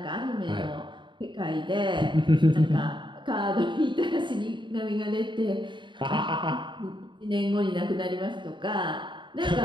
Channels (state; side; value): late; left; 0.23 ms